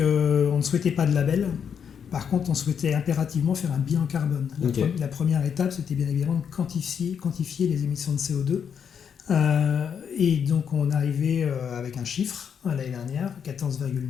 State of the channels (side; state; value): right; quieter; 7.5 dB